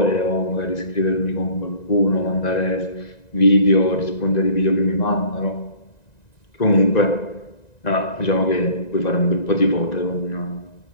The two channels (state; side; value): late; right; 1.9 ms